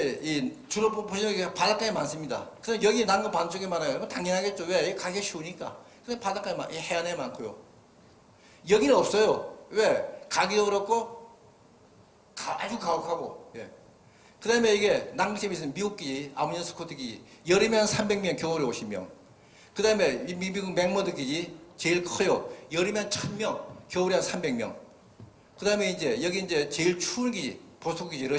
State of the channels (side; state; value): both; identical; correlation 1.00